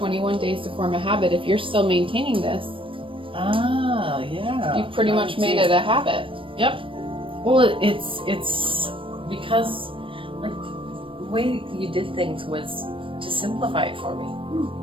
days to form a habit. If you're still maintaining this, yeah. you've pretty much made it a habit. Yep. Well, it's because like the way you did things was to simplify it for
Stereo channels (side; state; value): left; late; 0.25 ms